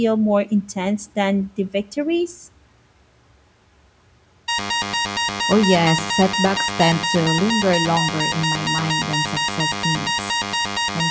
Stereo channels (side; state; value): both; identical; correlation 1.00